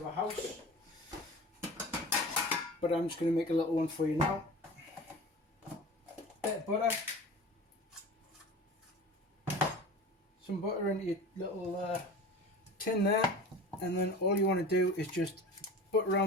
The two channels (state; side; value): normal; both; correlation 0.36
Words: a house, but I'm just going to make a little one for you now. Bit of butter, some butter into your little tin there, and then all you want to do is just butter